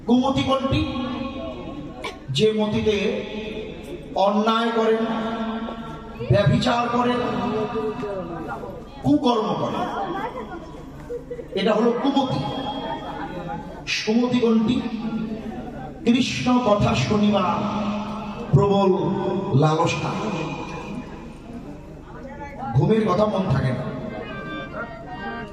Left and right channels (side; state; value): both; identical; correlation 1.00